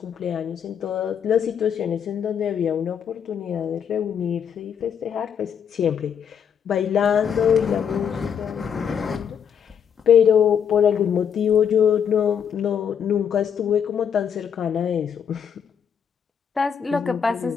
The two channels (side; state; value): right; quieter; 7.8 dB